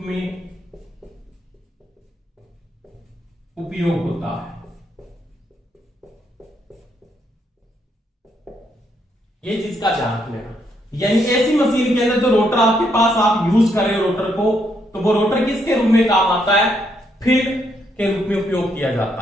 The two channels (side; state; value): both; normal; correlation 0.75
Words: उपयोग होता है। ये चीज का ध्यान रखना, यानी एसी मशीन के अंदर जो रोटर आपके पास आप यूज कर रहे हो रोटर को, तो वो रोटर किसके रूप में काम आता है, फील्ड के रूप में उपयोग किया जाता